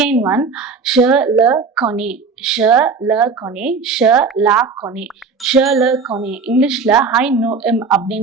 one, je le connais, je le connais, je la connais, je le connais. இங்கிலீஷ்ல I know him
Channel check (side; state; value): left; quieter; 4.8 dB